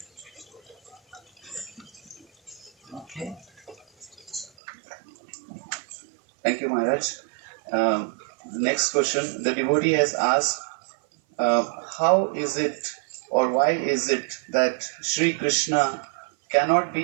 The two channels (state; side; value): drops out; left; at 4.5 s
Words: Okay? Thank you, Maharaj. Next question. The devotee has asked, how is it or why is it that Sri Krishna cannot